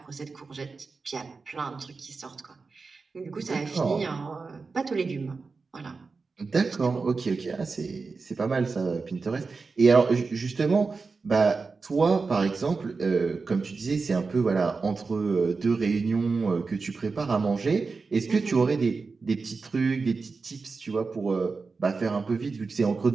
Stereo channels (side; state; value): left; quieter; 4.4 dB